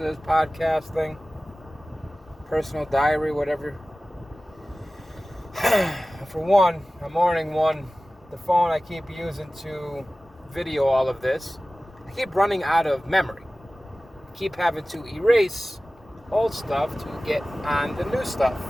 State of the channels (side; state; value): both; normal; correlation 0.97